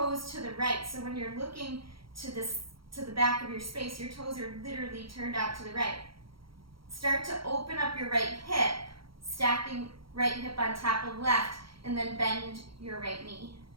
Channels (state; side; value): late; left; 0.74 ms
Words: to the right. So when you're looking to the back of your space, your toes are literally turned out to the right. Start to open up your right hip, stacking right hip on top of left, and then bend your right knee.